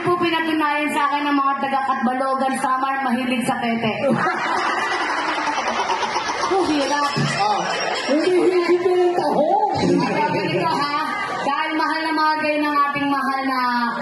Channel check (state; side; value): identical; both; correlation 1.00